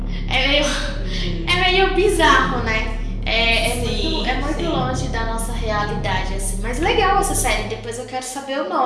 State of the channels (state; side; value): identical; both; correlation 1.00